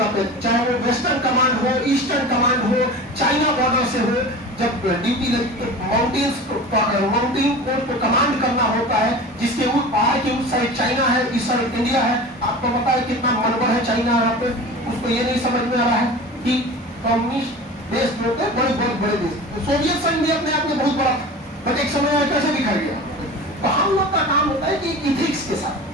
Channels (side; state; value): both; normal; correlation 0.35